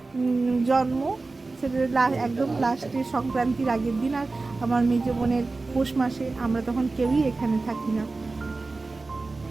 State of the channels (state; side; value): quieter; left; 3.6 dB